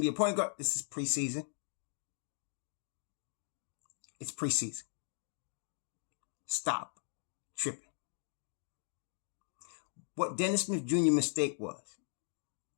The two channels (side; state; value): right; silent; digital silence